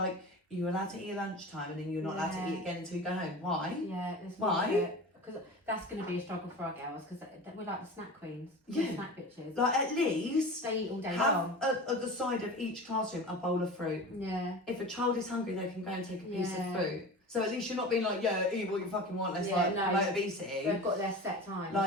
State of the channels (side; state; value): both; normal; correlation 0.33